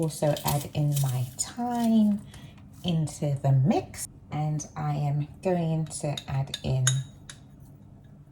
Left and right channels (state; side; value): identical; both; correlation 1.00